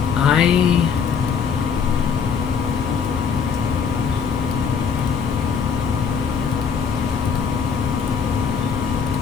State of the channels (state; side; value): quieter; right; 6.6 dB